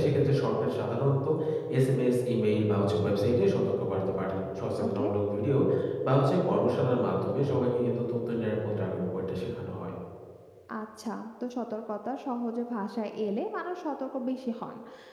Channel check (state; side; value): identical; both; correlation 1.00